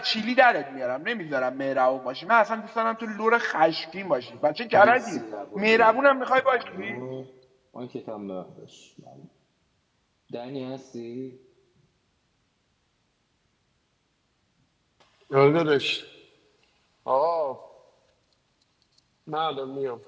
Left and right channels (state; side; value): identical; both; correlation 1.00